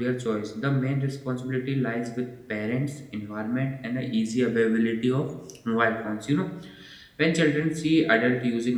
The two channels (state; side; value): identical; both; correlation 1.00